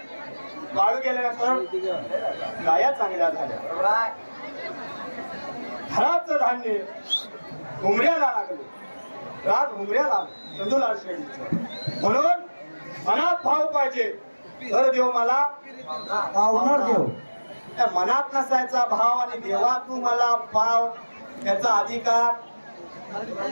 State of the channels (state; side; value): inverted; both; correlation -1.00